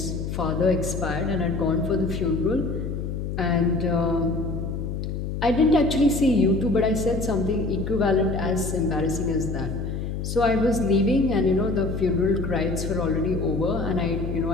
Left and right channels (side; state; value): left; noise; hum, 4 dB below the sound